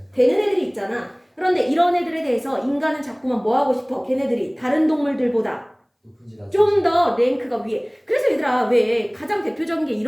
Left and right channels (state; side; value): identical; both; correlation 1.00